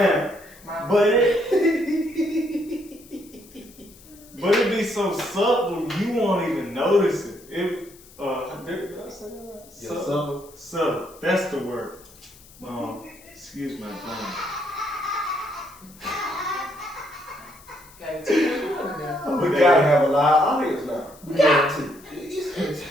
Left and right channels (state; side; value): noise; left; hiss, 23 dB below the sound